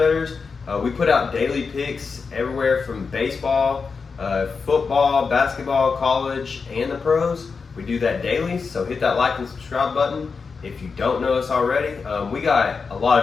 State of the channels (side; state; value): right; quieter; 5.1 dB